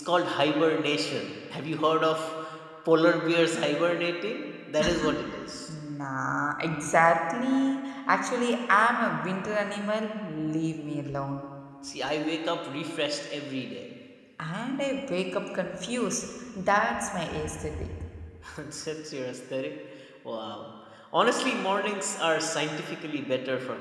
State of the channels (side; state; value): both; identical; correlation 1.00